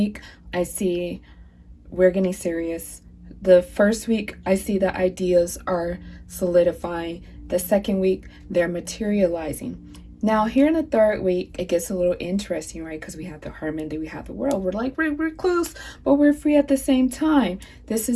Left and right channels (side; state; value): both; identical; correlation 1.00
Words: I see we're getting serious. The first week, I see the ideas are solidifying. The second week, they're materializing. Now, here in the third week, it gets a little interesting, right? Because we have the Hermit, then we have the World. We're like, we're close, but we're free at the same time. This